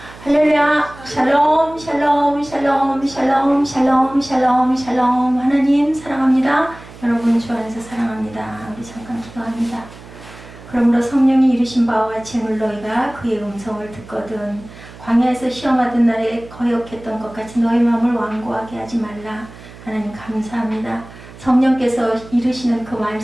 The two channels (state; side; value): noise; right; hum, 18 dB below the sound